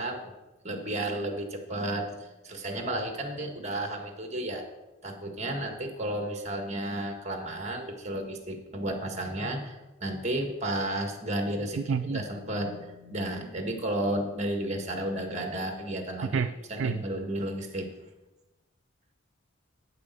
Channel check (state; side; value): normal; both; correlation 0.32